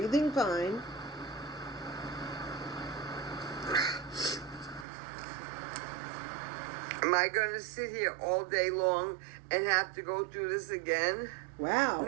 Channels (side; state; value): left; drops out; at 4.9 s